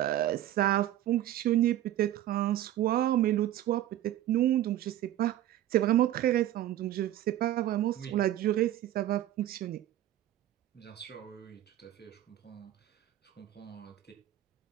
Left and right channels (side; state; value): left; quieter; 13.1 dB